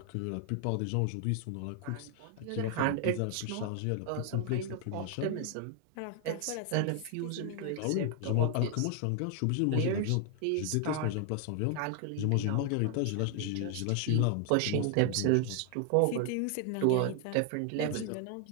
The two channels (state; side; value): different; both; correlation 0.00